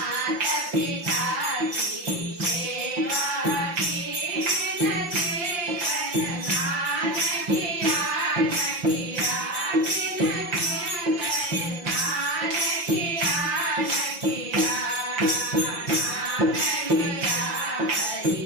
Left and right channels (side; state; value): left; late; 5.8 ms